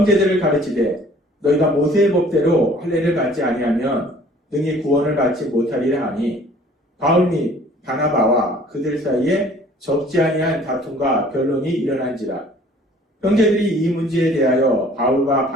가르치되 너희가 모세의 법대로 할례를 받지 아니하면 능히 구원을 받지 못하리라 하니 바울 및 바나바와 그들 사이에 적지 아니한 다툼과 변론이 일어난지라. 형제들이 이 문제에 대하여 바울과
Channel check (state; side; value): normal; both; correlation 0.53